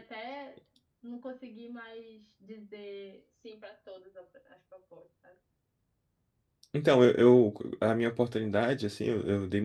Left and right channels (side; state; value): both; identical; correlation 1.00